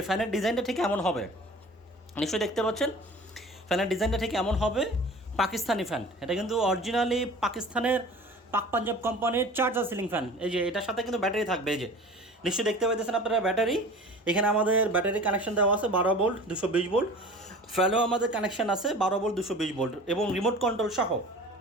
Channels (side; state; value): both; normal; correlation 0.41